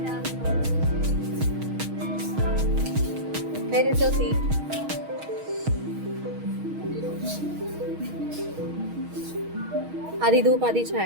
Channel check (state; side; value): late; left; 6.4 ms